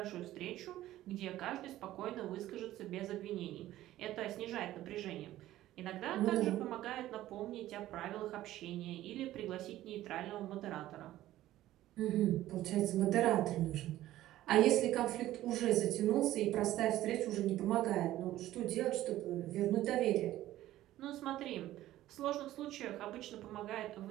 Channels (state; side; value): quieter; left; 14.5 dB